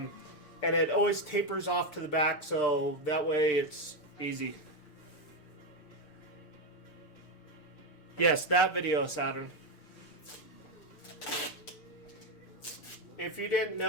it always tapers off to the back, so that way it's easy. Yes, that video, Saturn. If you didn't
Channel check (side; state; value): right; late; 6.7 ms